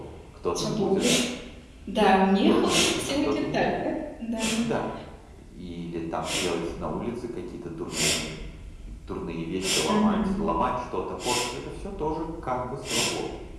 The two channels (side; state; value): both; identical; correlation 1.00